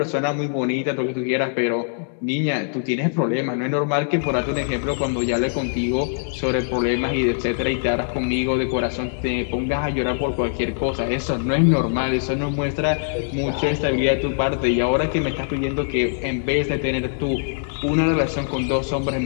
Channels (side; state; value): right; silent; digital silence